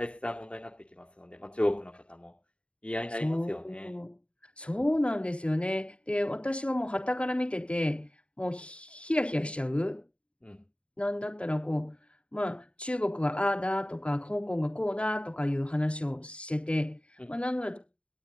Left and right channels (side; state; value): right; late; 0.058 ms